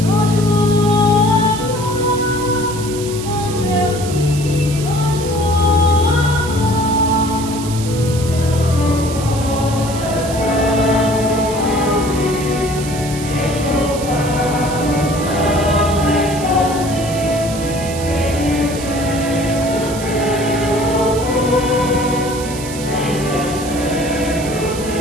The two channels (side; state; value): right; noise; hiss, 11 dB below the sound